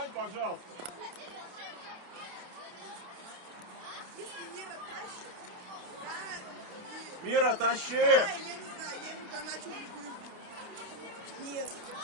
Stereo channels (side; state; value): left; late; 28 ms